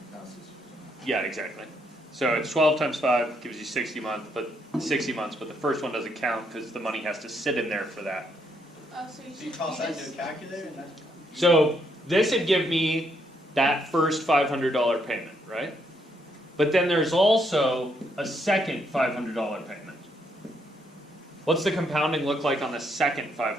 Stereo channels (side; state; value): both; normal; correlation 0.74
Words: count 60. Yeah, exactly. So it's 12 times 5 gives you 60 months, but the first one doesn't count because the money has to sit in there for that. oh, so you So you should toss that just- into a calculator and that's. So this would give me that first $500 payment, right? But then there's also a second $500 payment. What's the compounding look like on the second